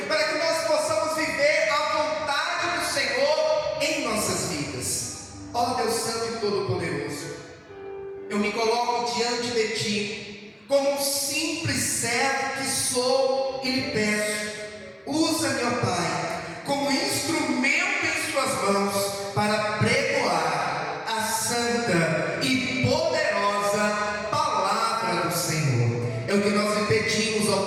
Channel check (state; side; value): identical; both; correlation 1.00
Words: para que nós possamos viver a vontade do Senhor em nossas vidas. Ó Deus Santo e Todo-Poderoso, eu me coloco diante de Ti, como um simples servo que sou, e lhe peço: usa-me, ó Pai, como instrumento em Suas mãos, para pregoar a santa e poderosa palavra do Senhor. É o que nós lhe pedimos, ó